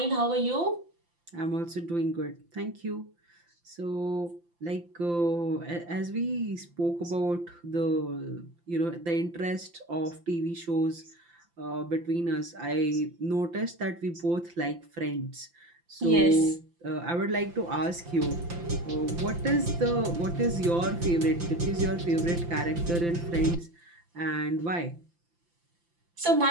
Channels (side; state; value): left; late; 5.8 ms